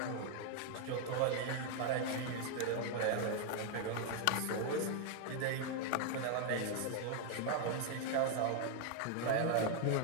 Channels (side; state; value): both; different; correlation 0.00